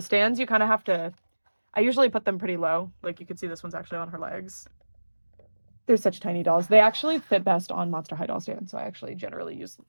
stands, you kind of have to... I usually put them pretty low. Like, you can see this one's actually on her legs. They're such tiny dolls. They actually fit best on Monster High doll stands. So I actually generally use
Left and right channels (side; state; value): both; inverted; correlation -1.00